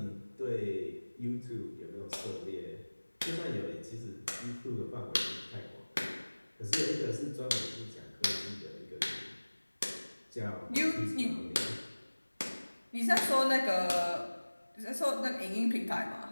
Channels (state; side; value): inverted; both; correlation -1.00